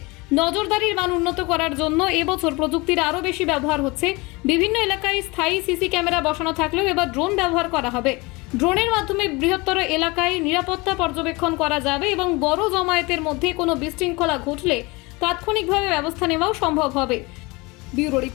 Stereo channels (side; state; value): right; quieter; 24.8 dB